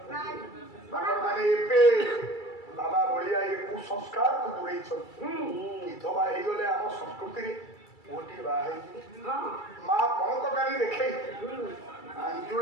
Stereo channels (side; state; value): right; late; 2.3 ms